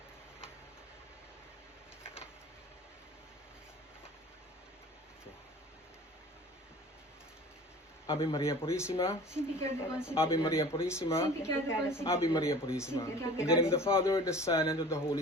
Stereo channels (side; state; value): both; normal; correlation 0.43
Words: Ave Maria Purissima, Ave Maria Purissima, Ave Maria Purissima. In the name of the Father, the Son, and of the Holy